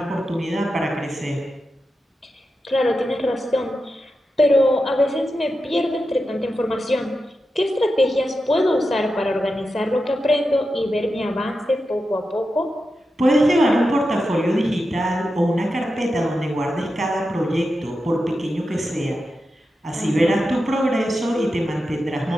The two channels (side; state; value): both; normal; correlation 0.90